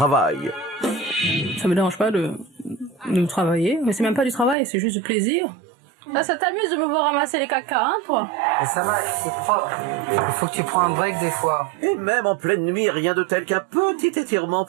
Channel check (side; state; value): left; drops out; at 4.5 s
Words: Ça me dérange pas de travailler, mais c'est même pas du travail, c'est juste du plaisir. Là, ça t'amuse de me voir ramasser les caca, hein, toi? Mais ça va, c'est propre. Il faut que tu prends un break des fois. Et même en pleine nuit, rien de tel qu'un petit étirement